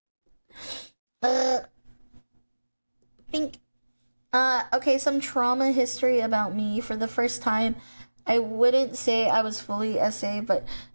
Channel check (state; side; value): inverted; both; correlation -1.00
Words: girl. Think. Okay, some trauma history about me. For the first time, I wouldn't say I was fully SA, but